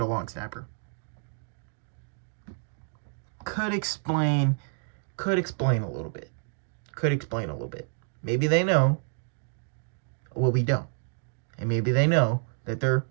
a long snapper. Could explain a little bit. Maybe they know. Well, we don't. And maybe they know that they're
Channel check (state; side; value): silent; left; digital silence